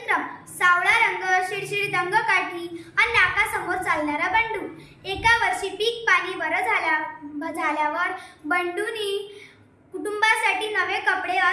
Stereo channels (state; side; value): identical; both; correlation 1.00